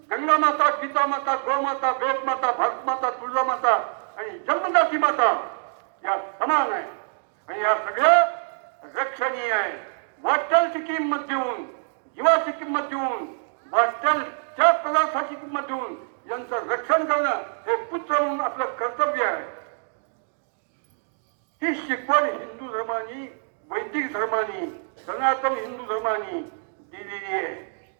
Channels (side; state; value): left; silent; 61 dB below the other